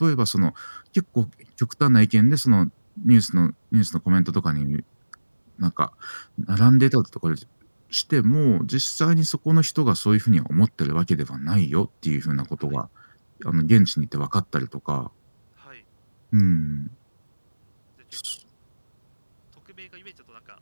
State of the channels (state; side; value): inverted; both; correlation -1.00